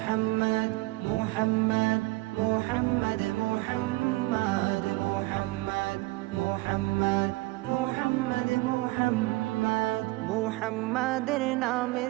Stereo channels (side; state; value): left; quieter; 21.4 dB